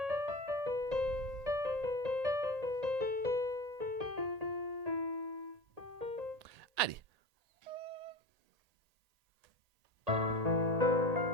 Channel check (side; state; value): left; late; 1.8 ms